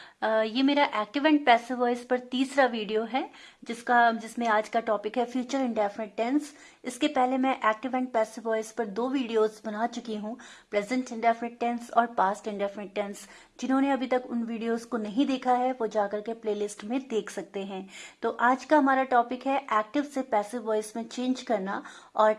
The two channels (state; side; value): identical; both; correlation 1.00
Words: ये मेरा एक्टिव एंड पैसिव वॉइस पर तीसरा वीडियो है जिसमें आज का टॉपिक है फ्यूचर इंडेफिनिट टेंस। इसके पहले मैं एक्टिव एंड पैसिव वॉइस पर 2 वीडियोस बना चुकी हूँ, प्रेजेंट इंडेफिनिट टेंस और पास्ट इंडेफिनिट टेंस। जिन्होंने अभी तक उन वीडियोस को नहीं देखा है वो जाकर के प्लेलिस्ट में देख सकते हैं। तो आज का हमारा टॉपिक है एक्टिव से पैसिव वॉइस में चेंज करना और